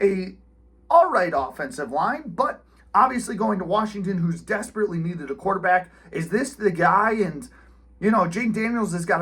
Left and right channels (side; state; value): both; identical; correlation 1.00